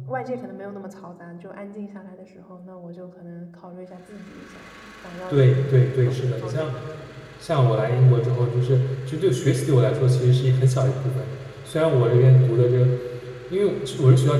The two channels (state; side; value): identical; both; correlation 1.00